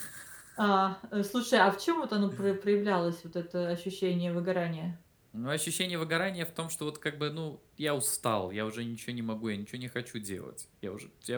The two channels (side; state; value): both; identical; correlation 1.00